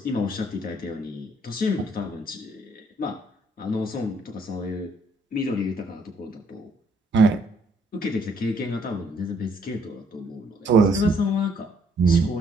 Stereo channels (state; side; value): normal; both; correlation 0.67